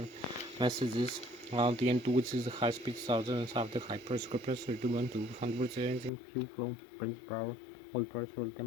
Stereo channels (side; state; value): right; drops out; at 6.1 s